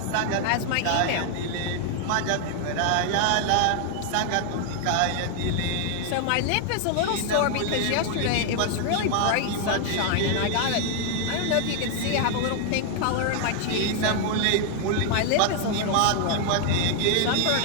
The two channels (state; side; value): different; both; correlation 0.00